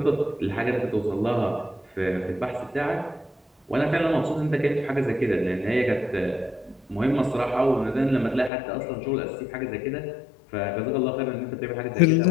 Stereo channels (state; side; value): drops out; right; at 8.5 s